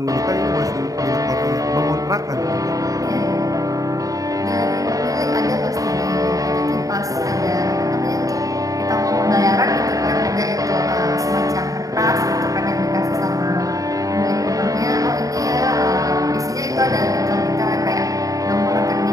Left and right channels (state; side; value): late; left; 0.17 ms